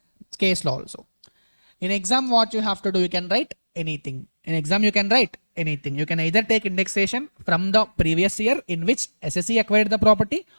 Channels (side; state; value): both; inverted; correlation -1.00